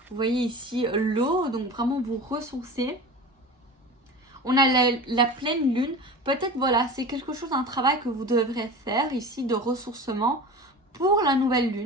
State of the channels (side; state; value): both; normal; correlation 0.33